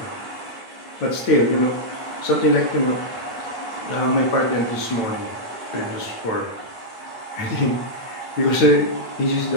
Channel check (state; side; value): late; right; 9.1 ms